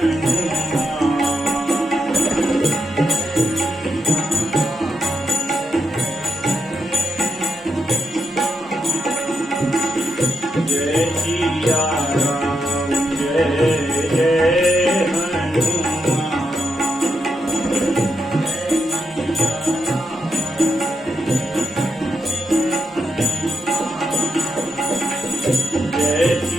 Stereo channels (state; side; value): normal; both; correlation 0.84